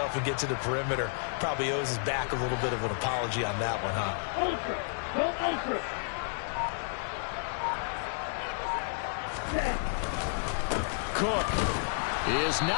and get to the perimeter. Probably owes his back a little bit of an apology on that one, huh? Cook is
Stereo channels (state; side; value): silent; right; digital silence